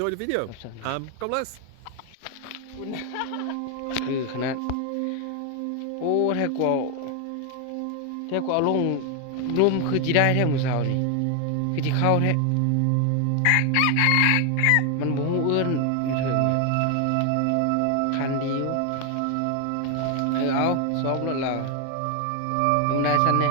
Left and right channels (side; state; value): both; different; correlation 0.01